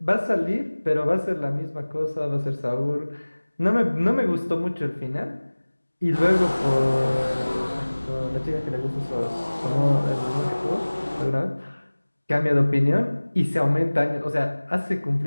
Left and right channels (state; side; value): inverted; both; correlation -1.00